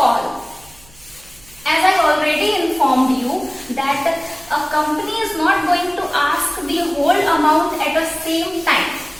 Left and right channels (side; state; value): right; noise; hum, 26 dB below the sound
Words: As I already informed you that a company is not going to ask the whole amount at the same time.